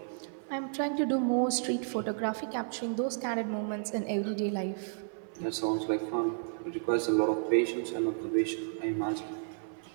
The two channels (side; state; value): left; silent; 56 dB below the other